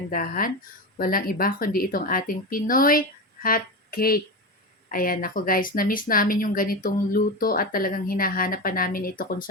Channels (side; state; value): both; normal; correlation 0.21